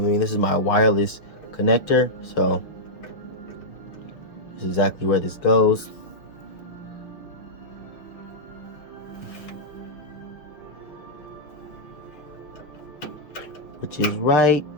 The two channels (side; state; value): right; late; 6.3 ms